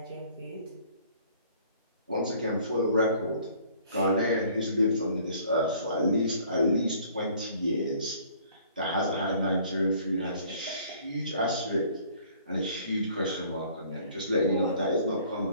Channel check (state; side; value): inverted; both; correlation -0.56